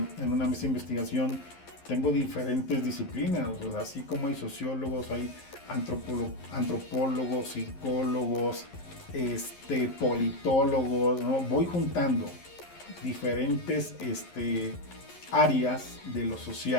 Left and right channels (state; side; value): late; right; 11 ms